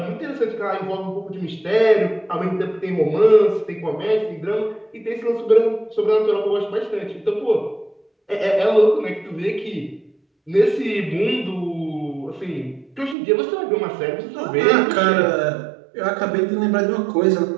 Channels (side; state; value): left; drops out; at 13.2 s